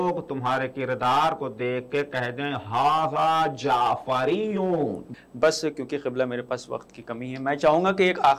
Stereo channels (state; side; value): identical; both; correlation 1.00